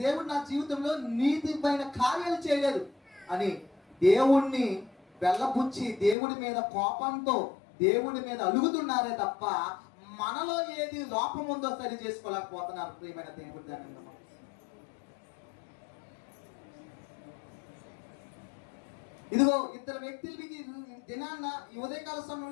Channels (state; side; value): drops out; right; at 6.2 s